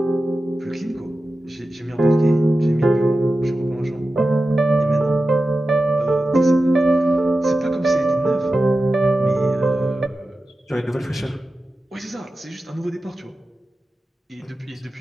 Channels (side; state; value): both; normal; correlation 0.93